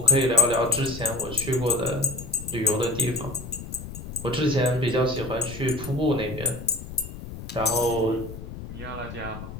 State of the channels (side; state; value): left; noise; rumble, 11 dB below the sound